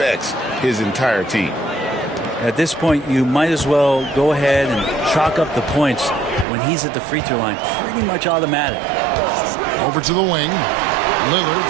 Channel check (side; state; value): left; drops out; at 6.5 s